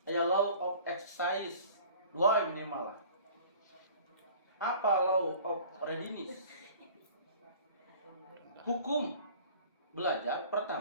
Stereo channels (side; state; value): both; inverted; correlation -0.47